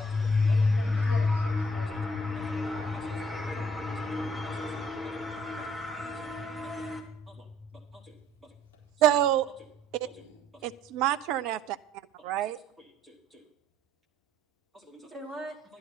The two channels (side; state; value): both; normal; correlation 0.61